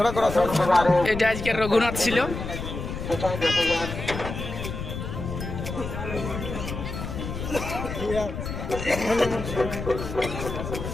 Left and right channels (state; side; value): noise; left; rumble, 6 dB below the sound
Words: এটা আজকের রঘুনাথ ছিল।